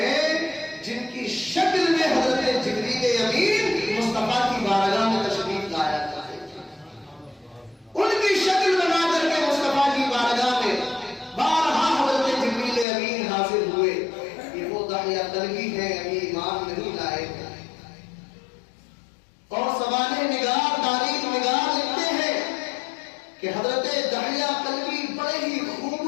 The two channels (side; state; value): right; drops out; at 12.9 s